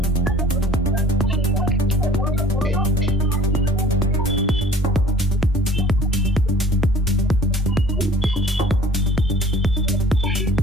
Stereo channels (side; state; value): both; normal; correlation 0.51